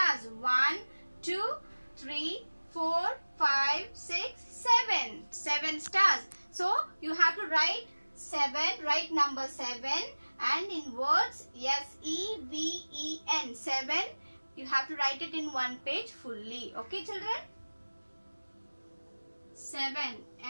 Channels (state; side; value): inverted; both; correlation -1.00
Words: 1, 2, 3, 4, 5, 6, 7. 7 stars. So, you have to write 7, write number 7 and in words S-E-V-E-N. 7. You have to write it in 1 page fully. Okay, children? 7.